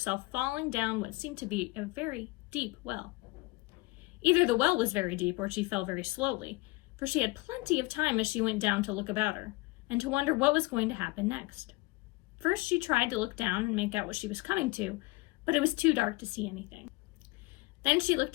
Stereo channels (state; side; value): quieter; right; 23.2 dB